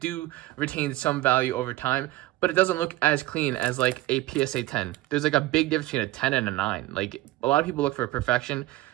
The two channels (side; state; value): left; quieter; 17.4 dB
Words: retain some value over time, but it doesn't look as clean as like a PSA 10. There's like a big difference between a 10 and a 9. Like a lot of people look for perfection,